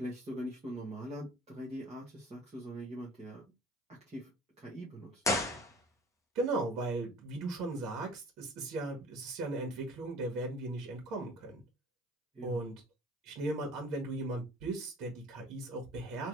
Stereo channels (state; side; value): normal; both; correlation 0.47